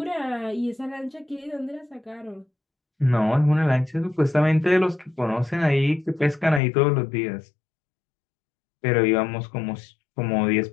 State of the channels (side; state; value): right; drops out; at 6.6 s